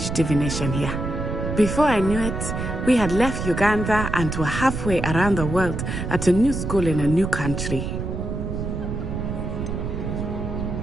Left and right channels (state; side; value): noise; right; rumble, 4 dB below the sound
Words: divination here. Before I knew it, we had left Uganda and were halfway around the world at a new school in a new country.